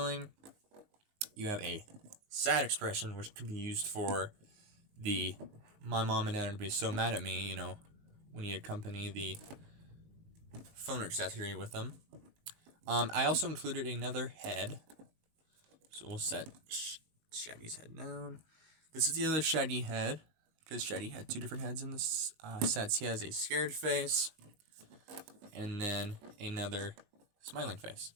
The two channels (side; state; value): left; late; 19 ms